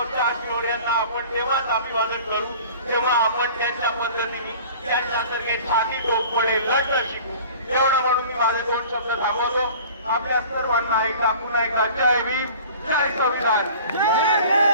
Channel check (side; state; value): both; inverted; correlation -0.44